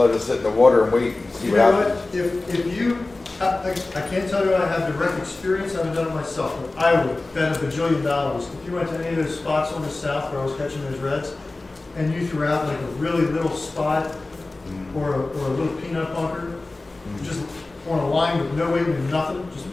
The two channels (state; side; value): quieter; right; 3.1 dB